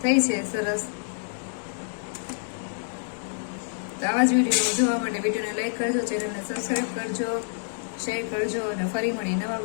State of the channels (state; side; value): silent; right; digital silence